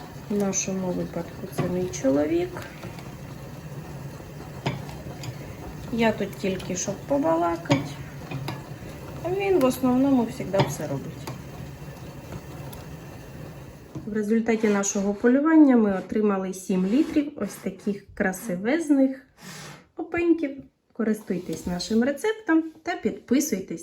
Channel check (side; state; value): both; identical; correlation 1.00